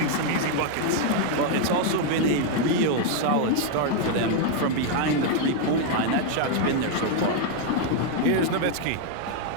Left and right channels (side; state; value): both; different; correlation 0.00